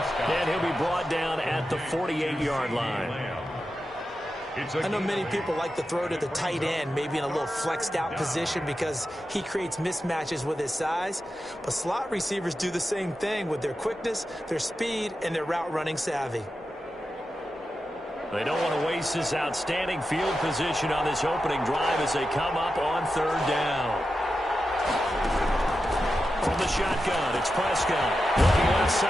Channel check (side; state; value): both; normal; correlation 0.90